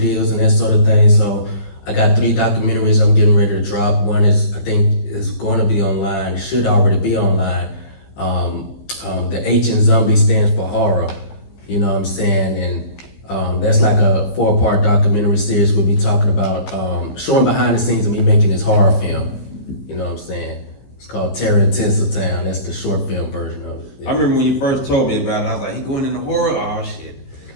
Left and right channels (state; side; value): late; right; 15 ms